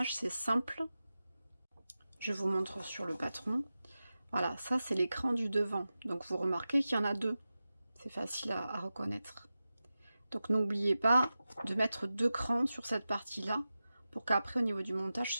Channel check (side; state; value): both; inverted; correlation -0.94